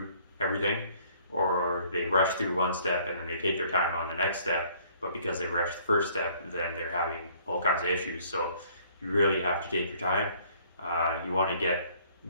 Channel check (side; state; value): both; inverted; correlation -0.59